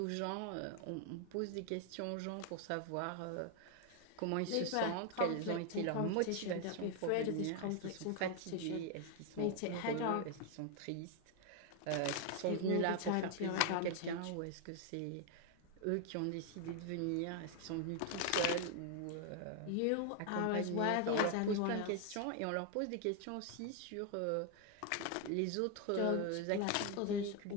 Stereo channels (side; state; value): both; different; correlation 0.01